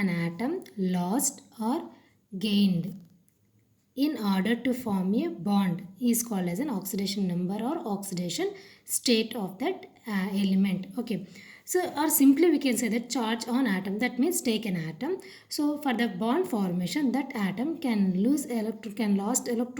atom lost or gained in order to form a bond is called as an oxidation number or oxidation state of that element. Okay, so or simply we can say that charge on atom, that means take an atom. So for the bond formation, that atom can lost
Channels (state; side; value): identical; both; correlation 1.00